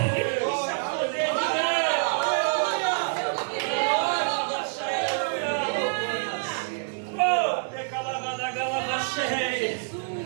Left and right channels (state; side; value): silent; left; digital silence